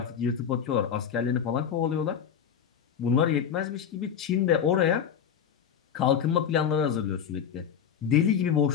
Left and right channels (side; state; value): right; quieter; 8.1 dB